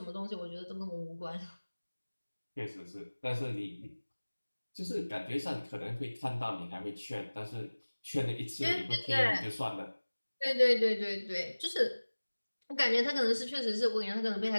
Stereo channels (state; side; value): inverted; both; correlation -1.00